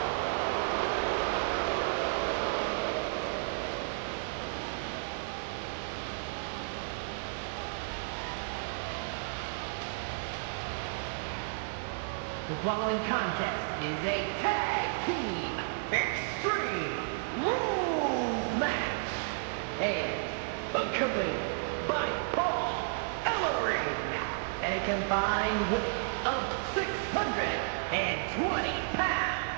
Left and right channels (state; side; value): silent; left; digital silence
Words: The following contest is a tag team extreme rules match and accompanied by Paul Ellering and a combined weight of 620 pounds.